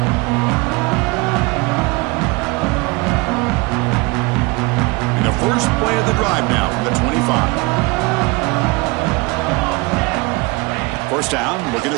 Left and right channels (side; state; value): left; quieter; 25.9 dB